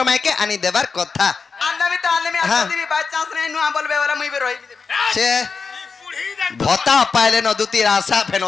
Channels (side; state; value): right; quieter; 5.1 dB